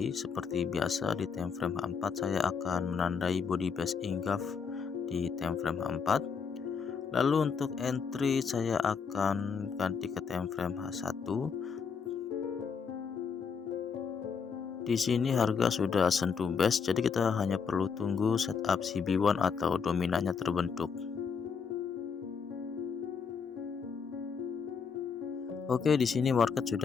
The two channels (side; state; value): right; quieter; 5.9 dB